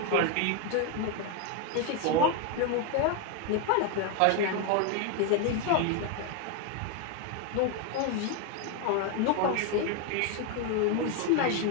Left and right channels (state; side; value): different; both; correlation 0.01